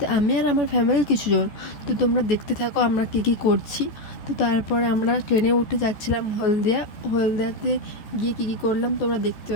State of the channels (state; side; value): late; right; 14 ms